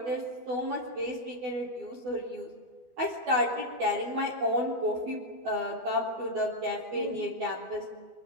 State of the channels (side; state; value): left; late; 12 ms